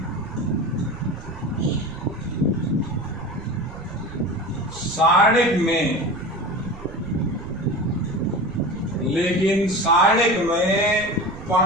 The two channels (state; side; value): noise; right; rumble, 15 dB below the sound